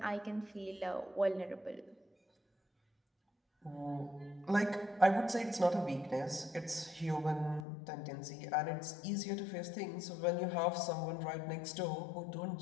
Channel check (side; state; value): right; drops out; at 7.7 s